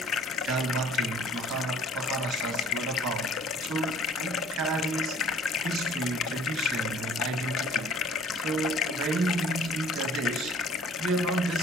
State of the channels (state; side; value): normal; both; correlation 0.52